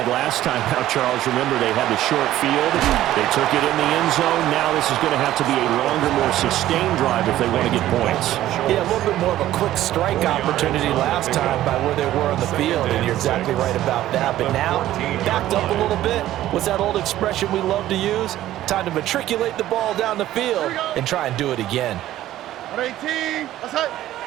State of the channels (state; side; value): quieter; left; 13.8 dB